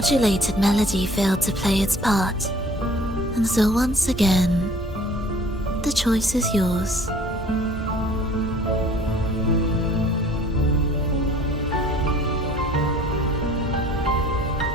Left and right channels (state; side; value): normal; both; correlation 0.52